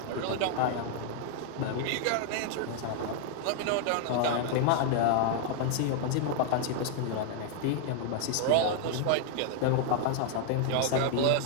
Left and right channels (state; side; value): different; both; correlation 0.00